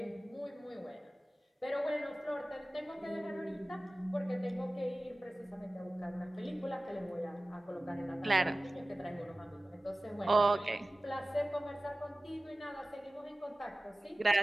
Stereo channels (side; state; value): both; normal; correlation 0.97